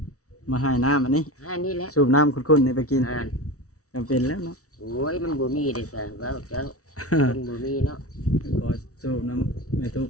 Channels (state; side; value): late; right; 0.65 ms